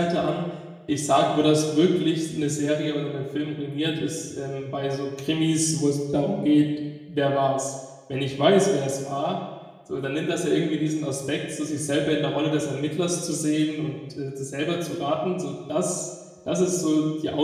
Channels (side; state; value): both; identical; correlation 1.00